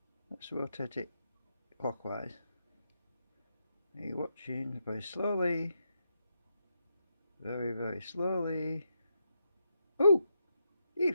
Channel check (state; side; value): inverted; both; correlation -0.83